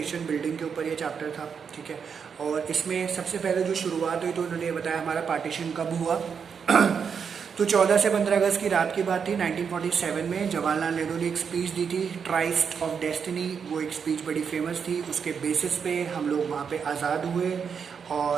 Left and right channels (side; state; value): left; quieter; 6.6 dB